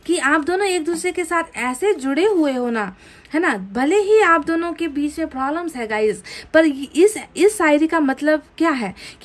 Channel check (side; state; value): both; identical; correlation 1.00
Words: कि आप दोनों एक दूसरे के साथ ऐसे जुड़े हुए हो ना, है ना, भले ही आप दोनों के बीच में प्रॉब्लम्स है गाइस, पर इस शायरी का मतलब क्या है